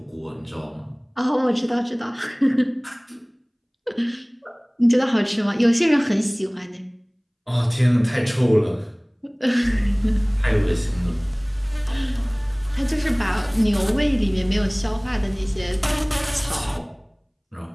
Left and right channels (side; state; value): both; identical; correlation 1.00